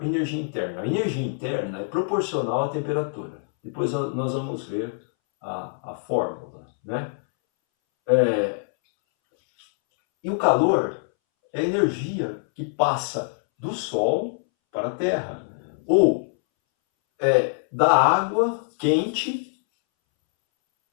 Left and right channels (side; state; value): right; silent; 62 dB below the other